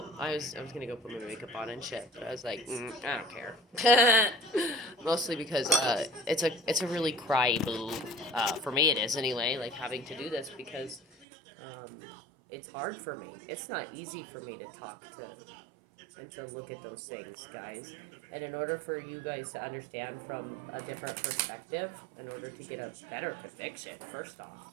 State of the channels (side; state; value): left; drops out; at 11.2 s